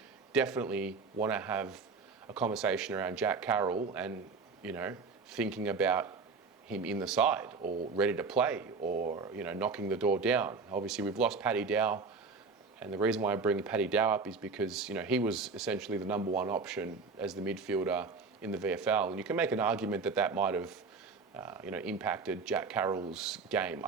definitely want to have a conversation around Jack Carroll and, thinking about him in the side or ready to play or, knocking the door down. Obviously, we've lost Paddy Dow. And the reason why I bring Paddy Dow up is because, he was essentially the number one option as the midfielder in the VFL. And you can make an argument that might have, impacted Jack Carroll's game.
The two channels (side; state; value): left; quieter; 4.6 dB